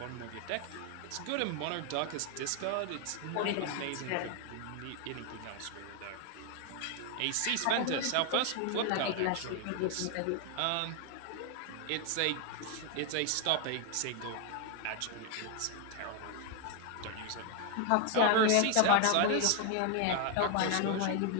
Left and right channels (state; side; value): different; both; correlation 0.00